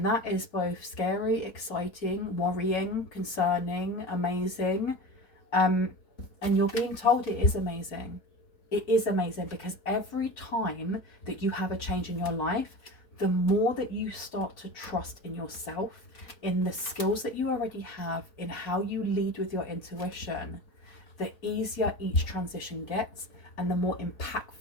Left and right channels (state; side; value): late; right; 4.3 ms